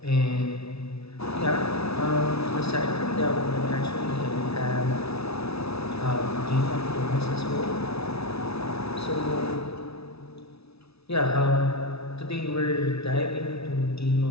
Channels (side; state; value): right; late; 0.79 ms